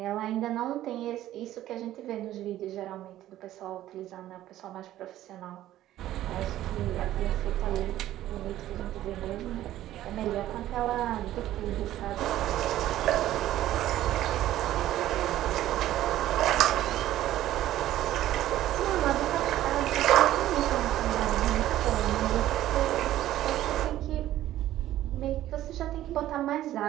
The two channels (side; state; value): left; quieter; 13.6 dB